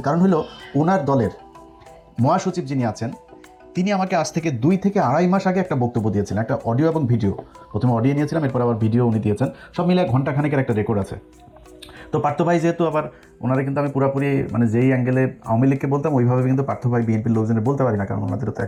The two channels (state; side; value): identical; both; correlation 1.00